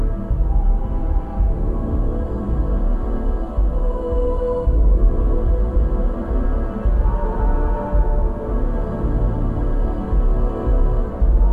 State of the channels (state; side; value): identical; both; correlation 1.00